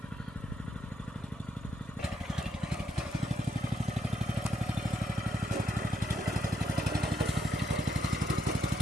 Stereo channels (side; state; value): both; normal; correlation 0.76